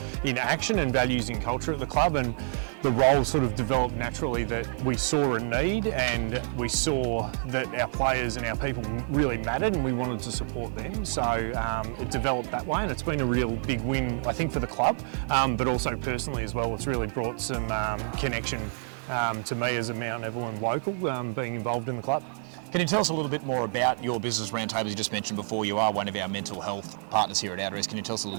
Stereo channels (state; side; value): silent; left; 59 dB below the other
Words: in action and values in culture at the club. And the role sort of developed naturally that we saw a need and we saw that our players and our people really mattered and we wanted to support them. So it developed that way, and it's been a real big win, I think, for the club, but also personally as well. It's really brought some connection to me as a Mt Evelyn local, being involved in the club. Can you tell us a little bit more about your business, Roundtable? You just mentioned before you are one of our mental health partners here at Outreach. Can you tell us a